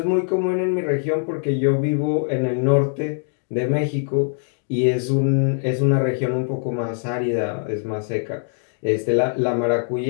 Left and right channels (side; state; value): right; silent; digital silence